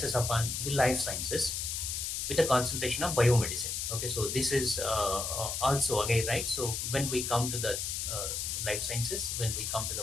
upon the life sciences with a concentration of biomedicine. Okay, so this is also again, right. So when we come to the life sciences, when we come to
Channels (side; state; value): left; noise; hiss, 2 dB below the sound